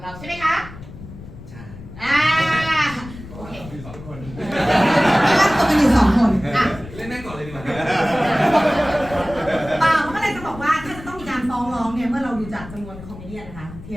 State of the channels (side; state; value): left; noise; rumble, 15 dB below the sound